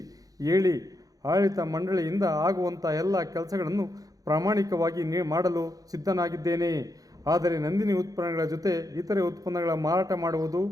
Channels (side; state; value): left; late; 0.17 ms